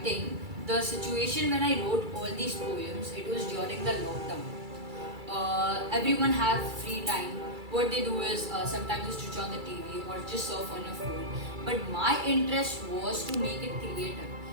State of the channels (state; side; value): late; left; 2.3 ms